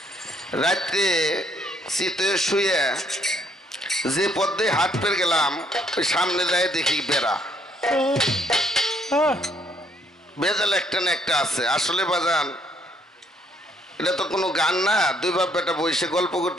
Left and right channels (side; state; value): both; normal; correlation 0.68